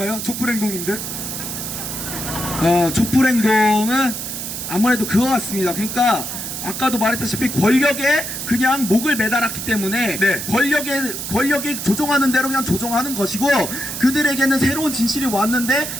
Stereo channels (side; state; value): right; noise; hiss, 6 dB below the sound